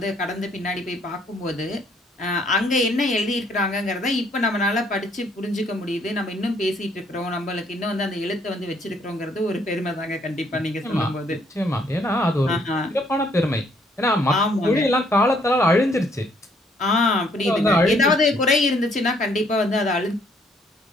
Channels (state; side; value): normal; both; correlation 0.66